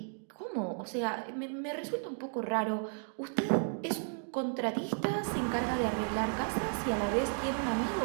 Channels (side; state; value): left; silent; 55 dB below the other